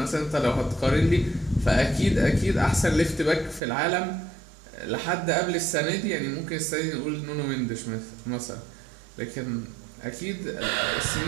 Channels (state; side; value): drops out; left; at 3.6 s